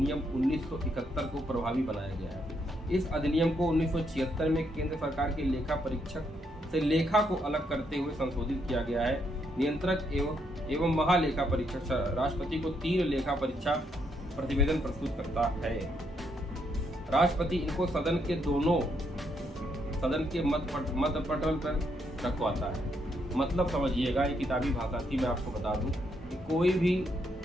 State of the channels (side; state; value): both; normal; correlation 0.76